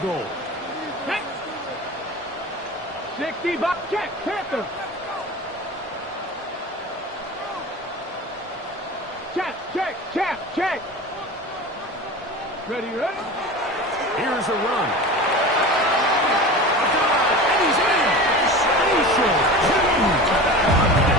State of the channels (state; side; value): normal; both; correlation 0.33